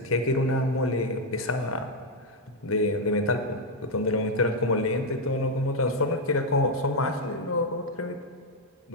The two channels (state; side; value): normal; both; correlation 0.01